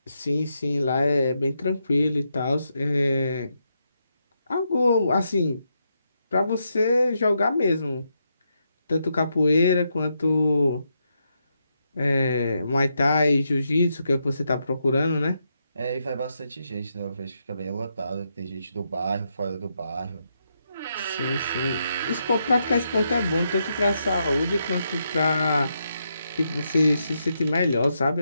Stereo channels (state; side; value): inverted; both; correlation -0.81